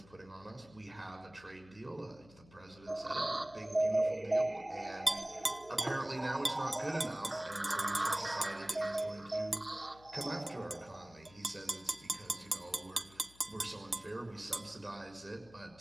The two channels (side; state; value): left; noise; hum, 24 dB below the sound